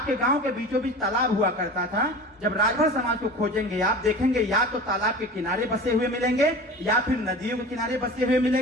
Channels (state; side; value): normal; both; correlation 0.36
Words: गांव के बीचों बीच तालाब हुआ करता था। जब राजभर समाज को खोजेंगे, आप देखेंगे या तो तालाब के किनारे बसे हुए मिलेंगे या फिर नदियों के किनारे बसे हुए